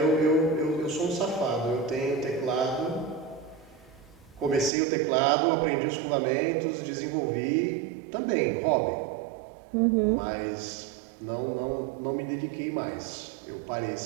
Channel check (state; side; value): drops out; left; at 4.7 s